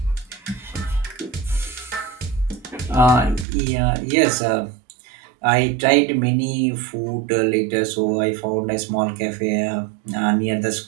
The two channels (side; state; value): left; drops out; at 3.5 s